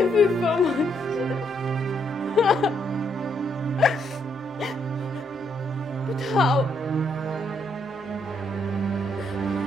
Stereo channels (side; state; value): both; normal; correlation 0.74